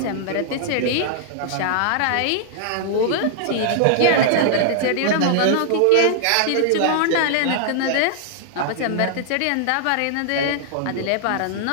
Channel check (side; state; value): both; different; correlation -0.01